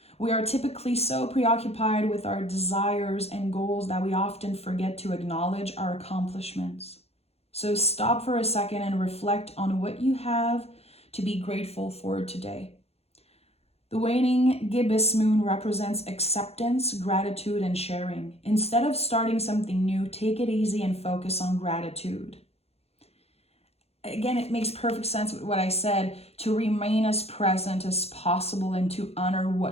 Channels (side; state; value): right; late; 0.30 ms